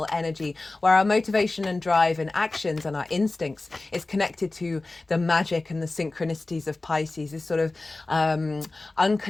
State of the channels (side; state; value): right; quieter; 3.2 dB